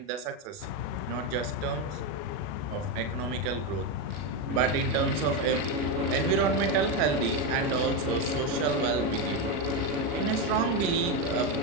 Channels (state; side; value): late; left; 40 ms